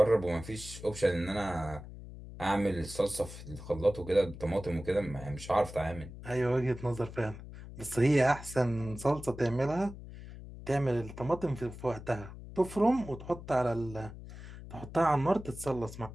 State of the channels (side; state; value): left; noise; hum, 13 dB below the sound